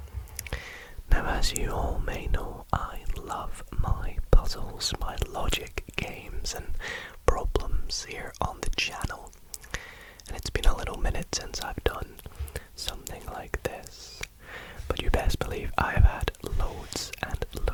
Now, as you all may know, I love my puzzles, my logic games and problems here on the channel, and it's been a little minute since I've done something like this, but you best believe I have had loads and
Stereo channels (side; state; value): both; identical; correlation 1.00